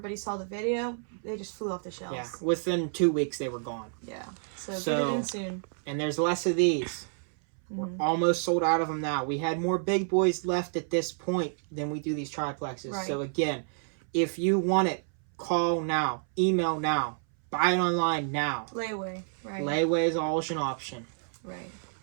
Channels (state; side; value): silent; left; 58 dB below the other